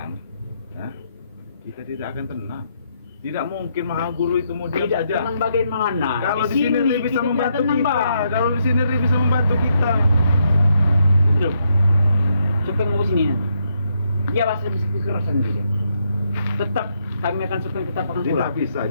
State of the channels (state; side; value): inverted; both; correlation -0.77